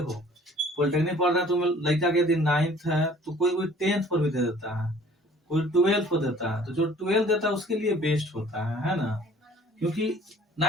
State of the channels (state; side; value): normal; both; correlation 0.53